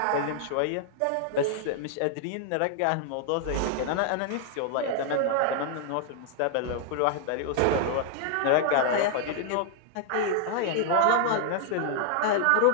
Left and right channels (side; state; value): both; different; correlation 0.00